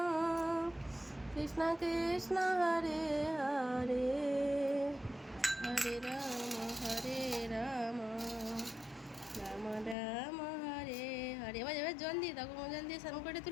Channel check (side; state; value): right; drops out; at 10.0 s